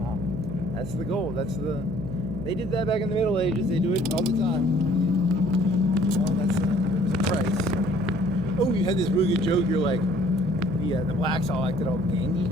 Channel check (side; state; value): right; noise; hum, 9 dB below the sound